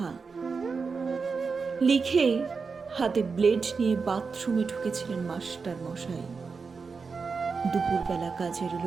লিখে হাতে ব্লেড নিয়ে বাথরুমে ঢুকেছিলেন মাস্টার মশাই। দুপুরবেলা কাজের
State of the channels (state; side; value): quieter; left; 5.0 dB